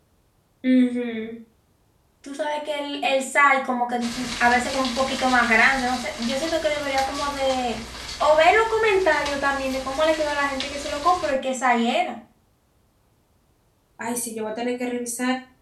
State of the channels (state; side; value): identical; both; correlation 1.00